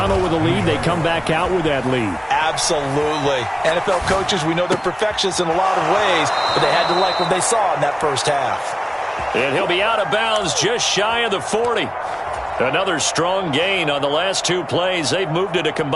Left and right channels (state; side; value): identical; both; correlation 1.00